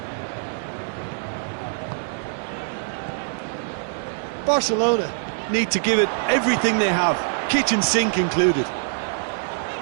Barcelona Need to give it everything they have, kitchen sink included.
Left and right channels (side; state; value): left; silent; digital silence